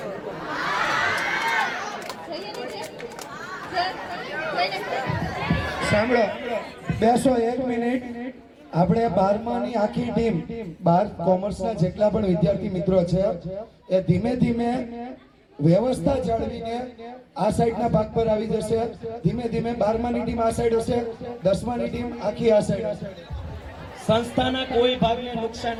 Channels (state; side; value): identical; both; correlation 1.00